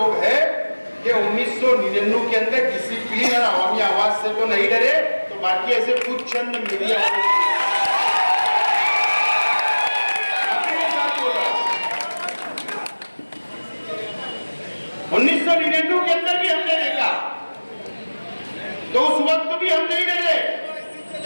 हैं कि 1999 के अंदर डिसिप्लिन और अवामी आवाज से तो नहीं डरे, तो बाकी ऐसे कुछ चंद मीडिया वाले 1999 के अंदर भी हमने देखा, तो उस वक्त भी हम नहीं डरे,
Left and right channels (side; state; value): both; inverted; correlation -1.00